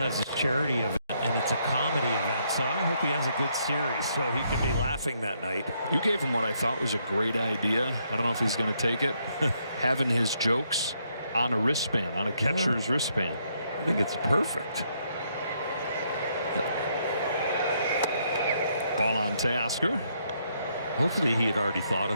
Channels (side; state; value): both; inverted; correlation -0.73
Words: his charity event and it's a comedy event, so I hope he has a good series so he can be laughing that night. You gave him what I thought was a great idea. I don't know if he's going to take it. Having his jokes on a wristband, on a catcher's wristband. I think it's perfect. Ball on Teoscar. Hopefully he had already thought